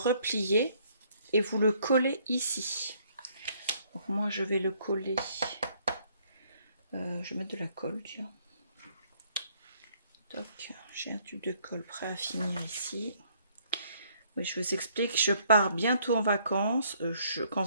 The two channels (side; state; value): both; inverted; correlation -0.65